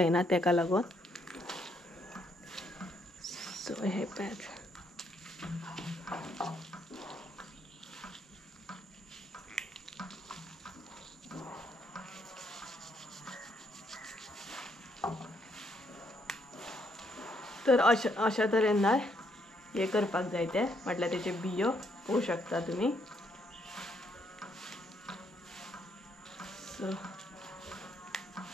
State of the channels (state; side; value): normal; both; correlation 0.73